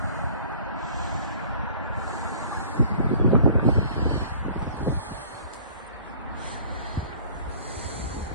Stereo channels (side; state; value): both; inverted; correlation -0.49